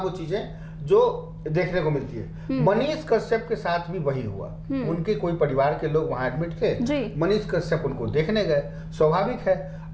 वो चीजें जो देखने को मिलती है। मनीष कश्यप के साथ भी वही हुआ। उनके कोई परिवार के लोग वहां एडमिट थे, मनीष कश्यप उनको देखने गए, स्वाभाविक है।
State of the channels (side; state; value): both; identical; correlation 1.00